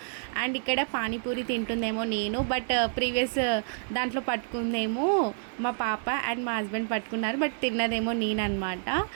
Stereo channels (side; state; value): left; silent; digital silence